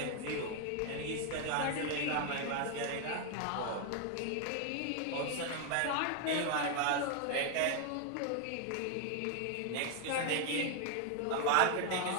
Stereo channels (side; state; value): both; different; correlation 0.01